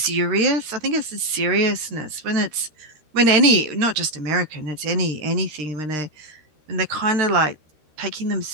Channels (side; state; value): left; late; 13 ms